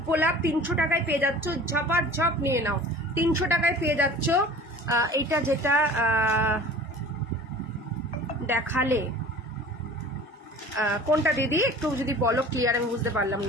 গোলাপ 300 টাকায় পেয়ে যাচ্ছ, ঝপার ঝপ নিয়ে নাও, 300 টাকায় পেয়ে যাচ্ছ। এইটা যেটা দেখালে কোনটা দিদি একটু যদি বলো ক্লিয়ার, আমি বুঝতে পারলাম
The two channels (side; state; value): both; normal; correlation 0.43